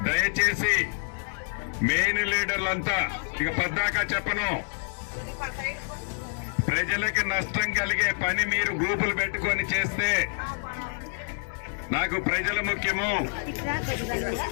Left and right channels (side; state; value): right; silent; 60 dB below the other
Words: దయచేసి మెయిన్ లీడర్లంతా ఇక పద్దాకా చెప్పను, ప్రజలకు నష్టం కలిగే పని మీరు గ్రూపులు పెట్టుకొని చేస్తే నాకు ప్రజలు ముఖ్యము.